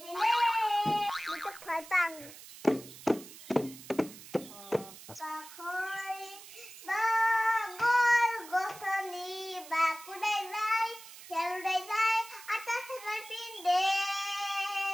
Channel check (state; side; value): noise; right; hiss, 16 dB below the sound